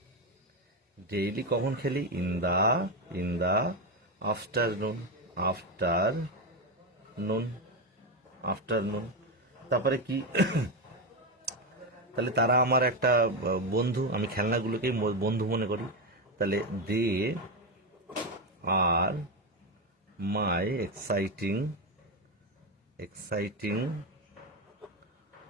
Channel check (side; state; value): both; normal; correlation 0.11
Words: ডেইলি কখন খেলি, ইন দা আফটারনুন। তারপরে কি তাহলে তারা আমার একটা বন্ধু, আমি খেলনাগুলোকেই বন্ধু মনে করি, তাহলে দে আর মাই এক্সাইটিং